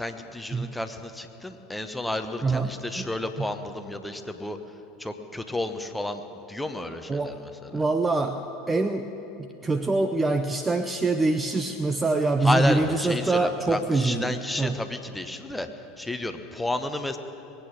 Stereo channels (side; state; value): both; normal; correlation 0.83